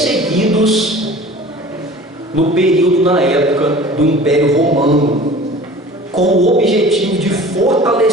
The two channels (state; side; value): normal; both; correlation 0.43